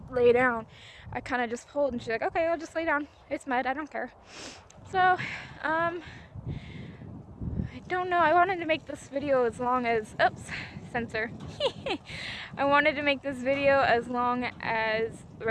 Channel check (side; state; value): both; identical; correlation 1.00